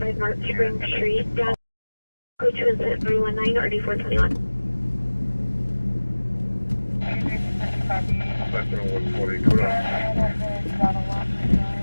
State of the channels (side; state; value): both; inverted; correlation -1.00